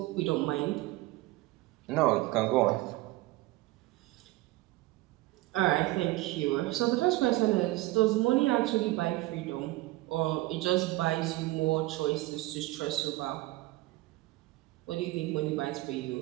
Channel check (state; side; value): quieter; left; 19.5 dB